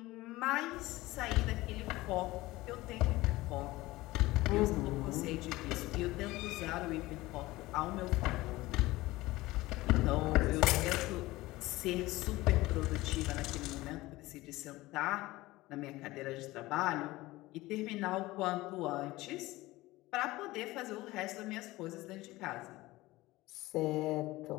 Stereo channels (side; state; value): right; quieter; 19.0 dB